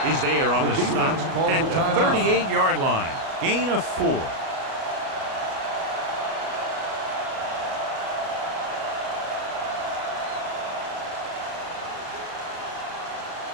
is there on the stop at the 38-yard line. Gain of 4.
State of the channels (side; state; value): left; late; 37 ms